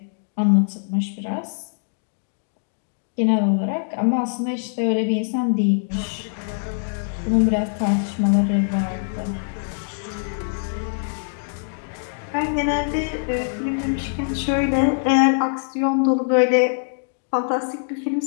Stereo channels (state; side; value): silent; right; digital silence